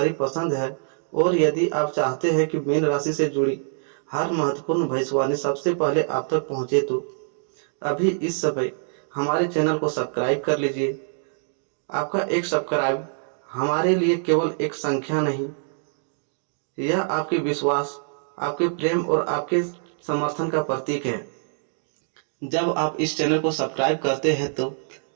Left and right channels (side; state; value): left; silent; digital silence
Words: पसंद है और यदि आप चाहते हैं कि मीन राशि से जुड़ी हर महत्वपूर्ण भविष्यवाणी सबसे पहले आप तक पहुंचे तो अभी इस समय हमारे चैनल को सब्सक्राइब कर लीजिए। आपका एक सब्सक्राइब हमारे लिए केवल एक संख्या नहीं, यह आपके विश्वास, आपके प्रेम और आपके समर्थन का प्रतीक है। जब आप इस चैनल को सब्सक्राइब करते हैं तो